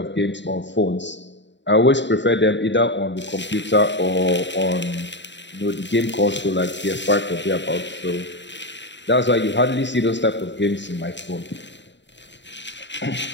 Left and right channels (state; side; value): late; right; 0.52 ms